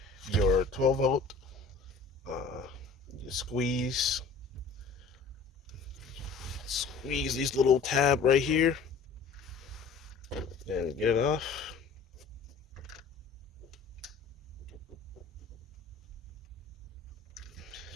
your 12 volt. You squeeze these little tab right here, and get it off.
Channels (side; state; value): right; quieter; 4.9 dB